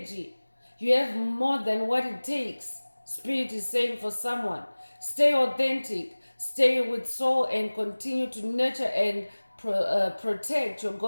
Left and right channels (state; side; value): inverted; both; correlation -1.00